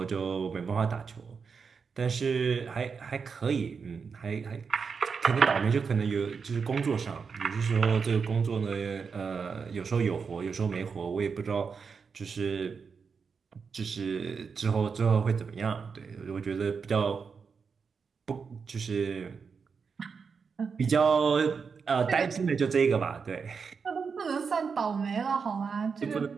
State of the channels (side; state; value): left; quieter; 5.6 dB